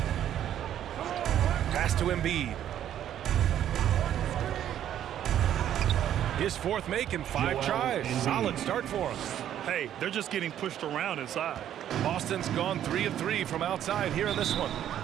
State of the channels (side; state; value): left; quieter; 10.8 dB